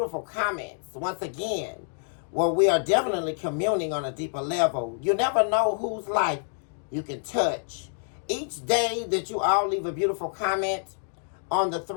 comments. Once again, where we are definitely communing on a deeper level. You never know whose life you can touch. Each day that you all leave a beautiful comment on the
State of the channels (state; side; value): silent; right; digital silence